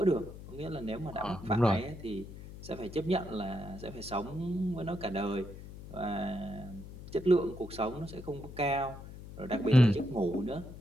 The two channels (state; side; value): noise; left; hum, 13 dB below the sound